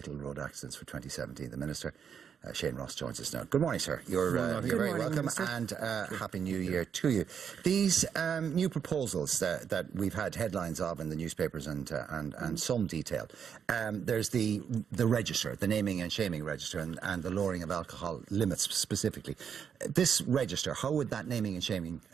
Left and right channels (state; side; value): quieter; left; 7.5 dB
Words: road accidents for 2017. The Minister, Shane Ross, joins us now. Good morning, sir. You're very welcome, Minister. And Happy New Year to you. These new proposals that we've had headlines of in the newspapers and some detail. There's the register, the naming and shaming register, and the lowering of alcohol limits specifically. This register, how would that naming and shaming